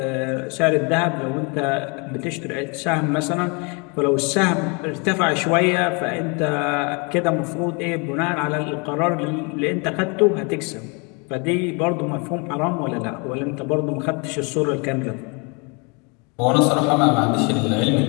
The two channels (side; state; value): right; quieter; 31.7 dB